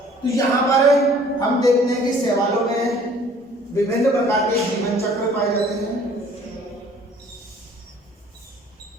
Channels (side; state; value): both; normal; correlation 0.54